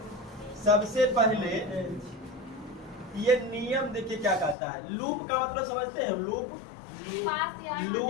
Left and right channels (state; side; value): drops out; right; at 4.5 s